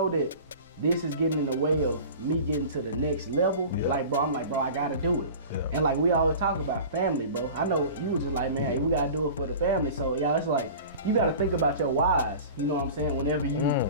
that this is getting in the way of me getting to the next level, like, bro, I gotta do it. Yeah. And like we always talk about family, bro. I know you was just like, man, hey, we gotta do it for the family. So y'all, it's like, you gotta think about your whys, you know what I'm saying? Whenever you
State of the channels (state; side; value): inverted; both; correlation -0.38